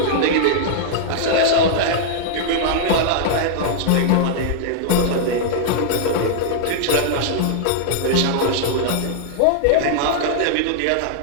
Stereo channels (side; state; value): both; different; correlation -0.01